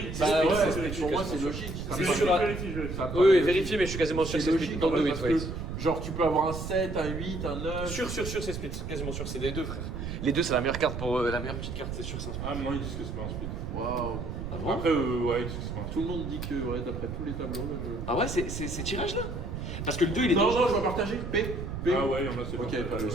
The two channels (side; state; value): right; noise; rumble, 6 dB below the sound